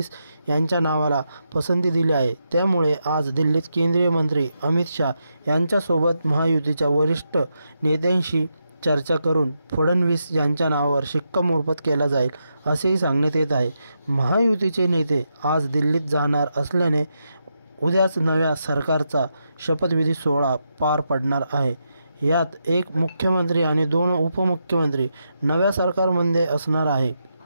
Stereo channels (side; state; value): both; inverted; correlation -0.84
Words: यांच्या नावाला पसंती दिली आहे. त्यामुळे आज दिल्लीत केंद्रीय मंत्री अमित शाह यांच्यासोबत महायुतीच्या वरिष्ठ नेत्यांशी चर्चा करून फडणवीस यांच्या नावावर शिक्कामोर्तब केला जाईल असेही सांगण्यात येत आहे. महायुतीचे नेते आज दिल्लीत जाणार असल्याने उद्याच नव्या सरकारचा शपथविधी सोहळा पार पडणार आहे. यात एक मुख्यमंत्री आणि 2 उपमुख्यमंत्री नव्या सरकारमध्ये असणार आहे.